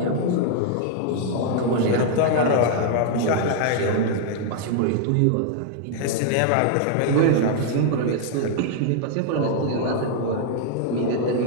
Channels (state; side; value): different; both; correlation 0.00